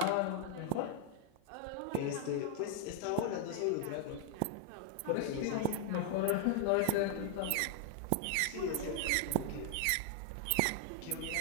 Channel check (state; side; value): different; both; correlation 0.00